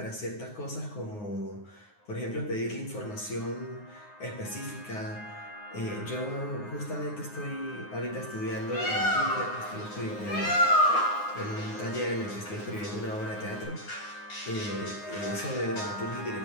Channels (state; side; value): late; right; 9.6 ms